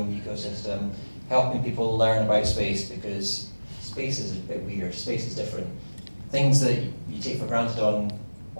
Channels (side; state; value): both; inverted; correlation -1.00